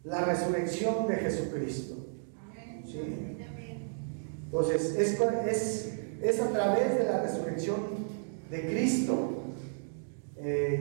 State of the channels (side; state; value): left; silent; digital silence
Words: la resurrección de Jesucristo. ¿Sí? Entonces es a través de la resurrección de Cristo